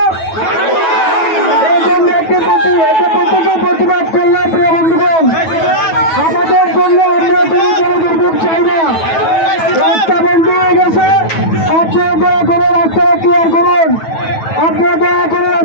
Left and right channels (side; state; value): right; late; 9.2 ms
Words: এই জন্য প্রত্যেকে প্রতিবাদ করলাম। প্রিয় বন্ধুগণ, আমাদের জন্য আমরা কোনো দুর্ভোগ চাই না। রাস্তা বন্ধ হয়ে গেছে, আপনারা দয়া করে রাস্তাটা ক্লিয়ার করুন। আপনারা দয়া করে